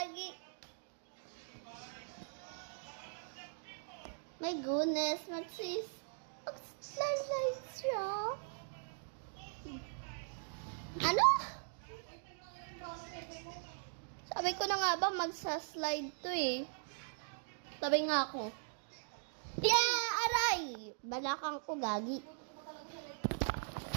My goodness, mag-slide siya. Ano? Sabi ko na nga ba magsa-slide to eh. Sabi nga ako. Yeah, aray! Balakang ko, gagi.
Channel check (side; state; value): left; silent; digital silence